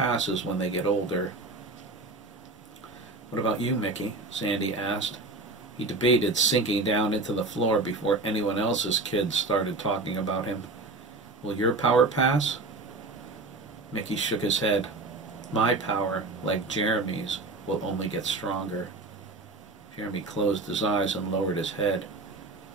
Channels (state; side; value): quieter; left; 3.3 dB